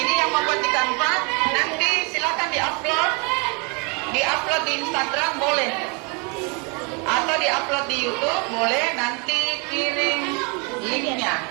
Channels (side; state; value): left; quieter; 33.1 dB